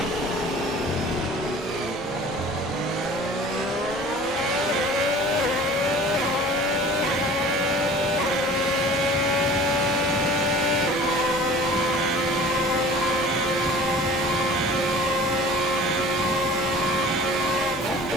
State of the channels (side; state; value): both; normal; correlation 0.45